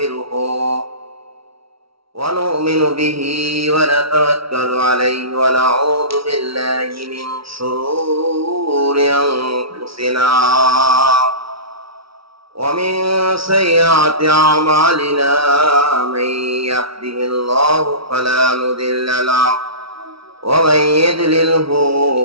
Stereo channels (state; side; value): late; left; 0.75 ms